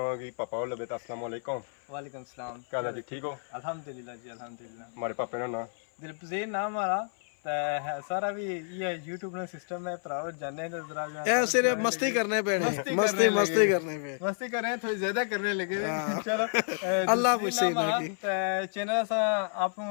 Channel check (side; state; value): right; silent; 56 dB below the other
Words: पापा लबे अस्सलाम वालेकुम। वालेकुम सलाम। क्या जी ठीक हो? अल्हम्दुलिल्लाह जी अल्हम्दुलिल्लाह। हमारे पापे का नाम दिलपजीर नाम हमारा है सारा भी ये YouTube ना सिस्टम है भराओ जाने तो जरा ऐसे मस्ती करने पे नहीं मस्ती करने पे मस्ती कर रहे हैं थोड़ी ज्यादा करने लगे चलो अल्लाह पूछे ना कि चैनल सा आप